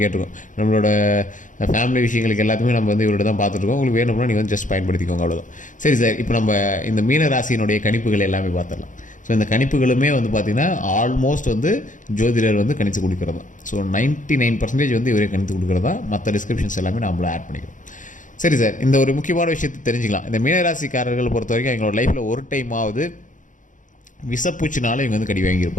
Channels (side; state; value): right; late; 0.37 ms